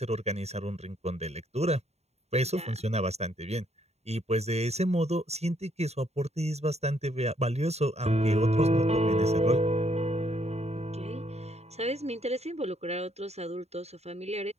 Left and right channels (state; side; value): late; left; 0.31 ms